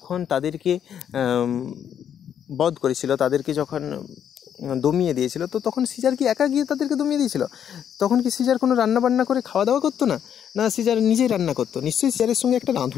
তাদেরকে বধ করেছিল, তাদেরকে যখন দমিয়ে দিয়েছিল, তো তখন সিজার কি একা গিয়ে তাদেরকে দমিয়ে দিয়েছিল? তখন কি সিজার কোনো রান্নাবান্না করে খাওয়া দাওয়া করতো না? না, সিজার নিজেই রান্না করতো। নিশ্চয়ই সিজারের সঙ্গে একটা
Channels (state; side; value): quieter; right; 9.0 dB